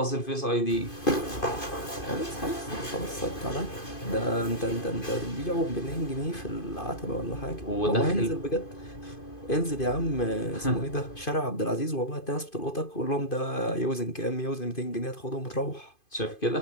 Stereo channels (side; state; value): right; late; 2.5 ms